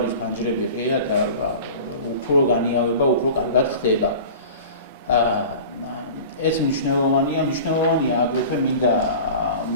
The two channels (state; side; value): inverted; both; correlation -0.38